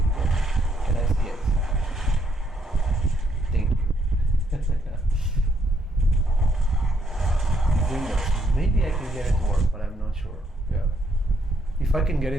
can I see it? Thank you. Windows. Maybe I can get it to work, but I'm not sure. Yeah. If I can get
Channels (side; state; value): both; normal; correlation 0.73